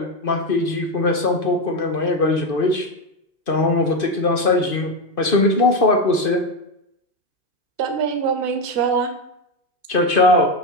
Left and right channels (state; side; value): late; right; 2.5 ms